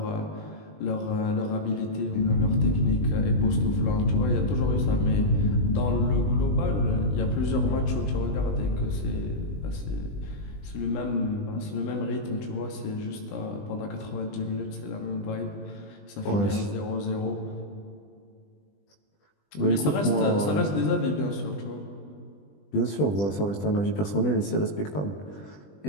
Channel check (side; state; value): right; late; 20 ms